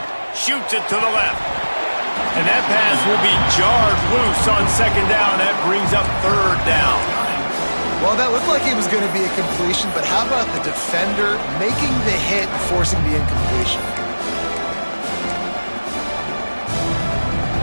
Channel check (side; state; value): both; inverted; correlation -1.00